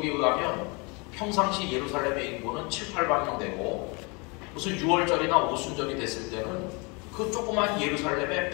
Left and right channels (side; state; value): right; quieter; 30.1 dB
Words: 의하면 평상시 예루살렘의 인구는 7, 8만 명 되고, 무슨 6월절이나 오순절이 됐을 때는 그 조그만 예루살렘에